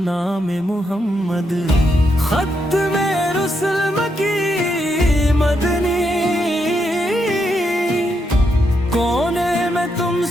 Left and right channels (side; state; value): both; normal; correlation 0.80